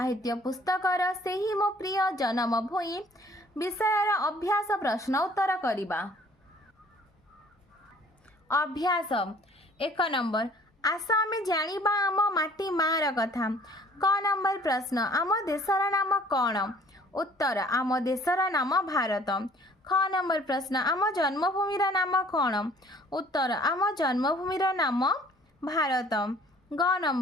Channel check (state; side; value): normal; both; correlation 0.55